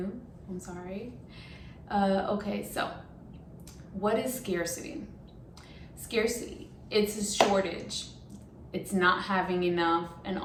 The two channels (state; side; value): identical; both; correlation 1.00